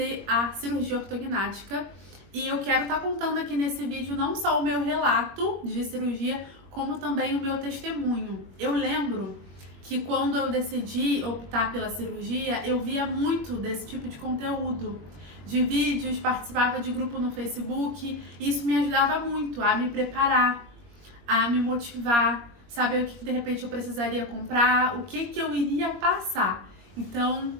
a cirurgia ortognática e eu quero estar contando aqui nesse vídeo não só o meu relato de cirurgia, como também o meu testemunho. Eu lembro que quando eu decidi optar pela cirurgia, eu via muito desse tipo de conteúdo, de vídeos, participava de grupo no Facebook, e isso me ajudava muito a me preparar, a me motivar, saber o que de repente eu precisaria comprar, o que eu iria passar. Então,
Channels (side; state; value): left; late; 21 ms